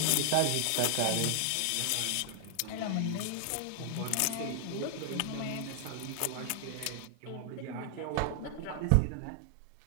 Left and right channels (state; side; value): different; both; correlation 0.00